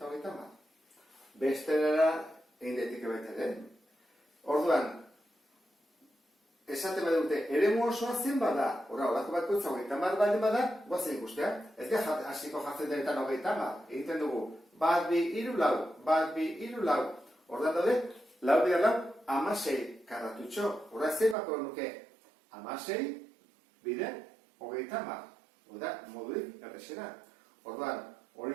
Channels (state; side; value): drops out; left; at 21.4 s